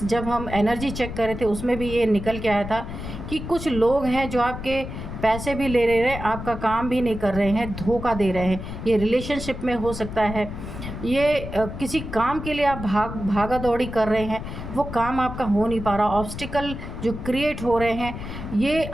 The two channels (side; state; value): left; noise; rumble, 8 dB below the sound